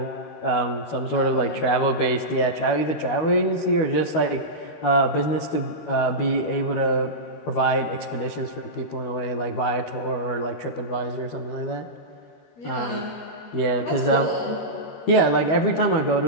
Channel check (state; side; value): late; right; 13 ms